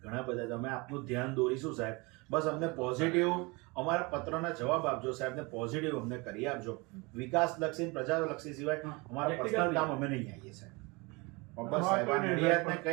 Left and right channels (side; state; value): left; quieter; 26.8 dB